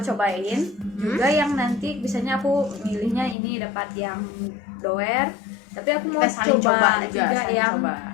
cobain juga yang nanti biasanya aku milihnya ini dapat yang doer, tapi aku mau coba juga yang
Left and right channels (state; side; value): drops out; right; at 3.4 s